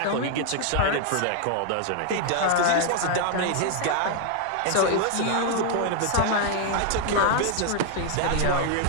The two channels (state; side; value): different; both; correlation 0.00